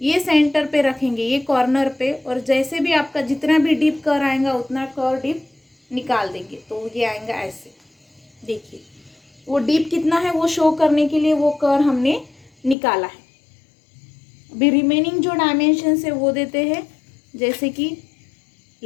सेंटर पे रखेंगे, ये कॉर्नर पे, और जैसे भी आपका जितना भी डीप कर आएगा उतना कर डीप निकाल देंगे। तो ये आएगा ऐसे, देखिए वो डीप कितना है वो शो करने के लिए वो कर हमने निकाला है। अभी रिमेनिंग जो डायमेंशन है वो देते हैं, जैसे कि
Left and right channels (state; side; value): drops out; right; at 12.8 s